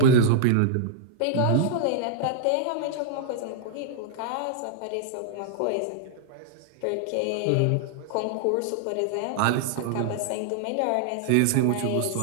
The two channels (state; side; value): different; both; correlation -0.01